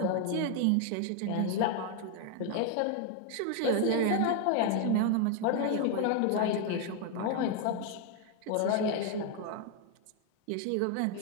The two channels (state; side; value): different; both; correlation 0.00